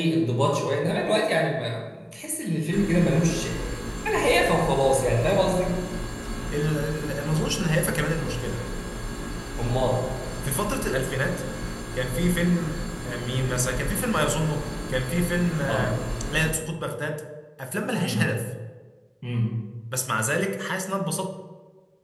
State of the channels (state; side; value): identical; both; correlation 1.00